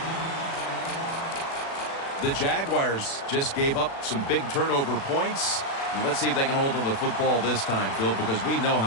The Jaguars just gave up some big turnover points. And let's see if they can hold on to the football this time, Phil, because we know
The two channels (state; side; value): late; right; 36 ms